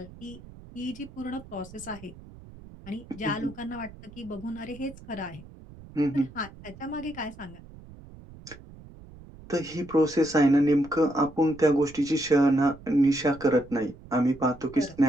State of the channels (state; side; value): noise; right; rumble, 19 dB below the sound